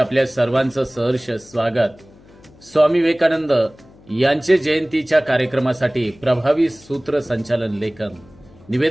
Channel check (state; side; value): noise; left; hum, 25 dB below the sound